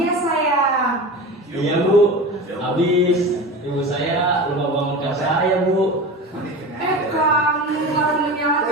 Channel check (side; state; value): both; normal; correlation 0.30